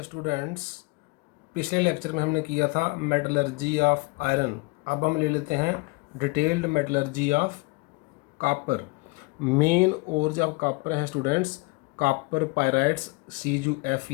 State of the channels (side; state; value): right; quieter; 26.4 dB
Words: students, पिछले lecture में हमने किया था मेटलर्जी ऑफ आयरन। अब हम ले लेते हैं detailed metallurgy of copper. Main और जो कॉपर है students, copper pyrites